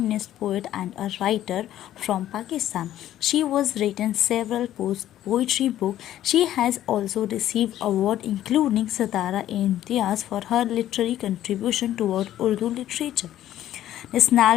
poet and a writer from Pakistan. She was written several poetry books. She has also received awards including Satara-e-Imtiaz for her literary contribution toward Urdu literature.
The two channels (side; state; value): right; quieter; 12.6 dB